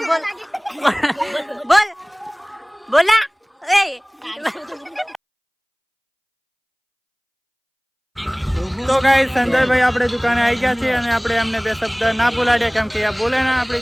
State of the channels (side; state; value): both; identical; correlation 1.00